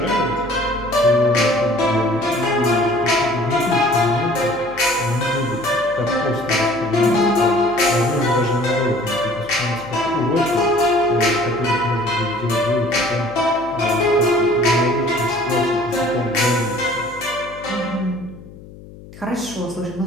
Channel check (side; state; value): left; noise; hum, 18 dB below the sound